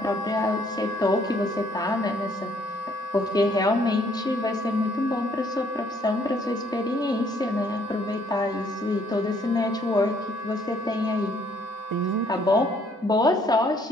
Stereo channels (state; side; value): normal; both; correlation 0.65